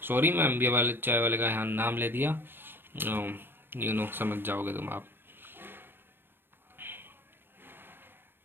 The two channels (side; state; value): left; late; 0.10 ms